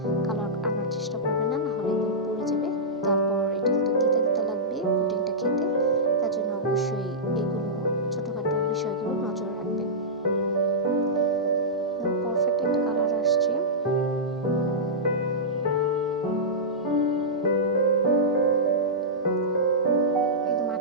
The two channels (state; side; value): normal; both; correlation -0.15